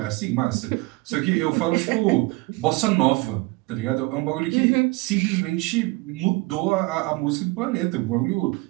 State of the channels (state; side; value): quieter; left; 24.0 dB